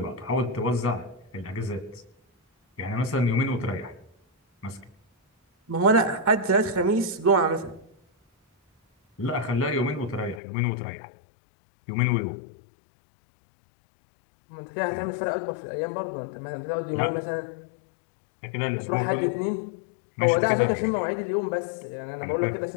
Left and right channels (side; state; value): right; drops out; at 10.4 s